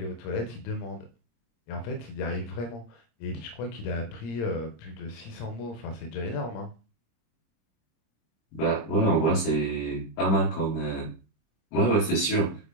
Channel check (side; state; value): right; late; 26 ms